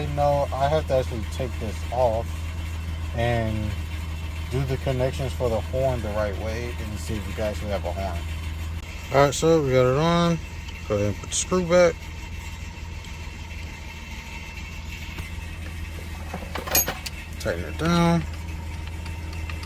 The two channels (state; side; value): identical; both; correlation 1.00